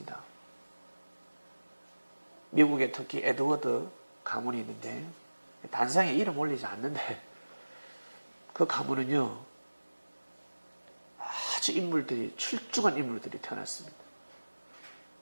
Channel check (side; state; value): both; inverted; correlation -1.00